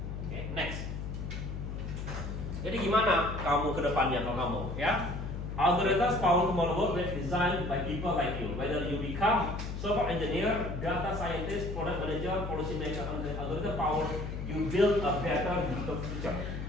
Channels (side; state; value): left; noise; hum, 5 dB below the sound